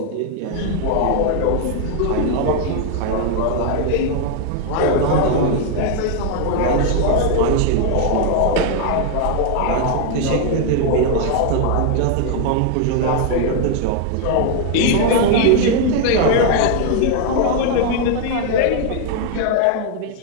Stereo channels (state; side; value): different; both; correlation 0.00